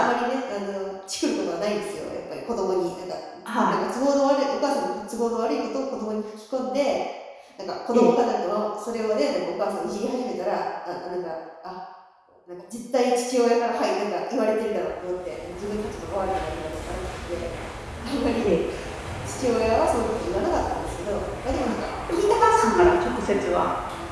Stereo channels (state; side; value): identical; both; correlation 1.00